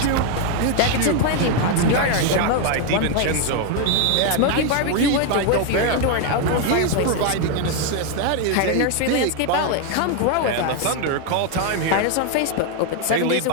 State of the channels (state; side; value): different; both; correlation 0.01